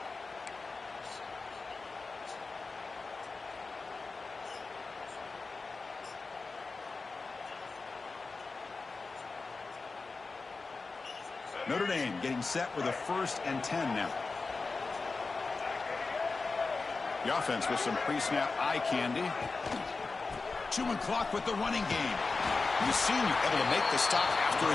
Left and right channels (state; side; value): quieter; right; 4.0 dB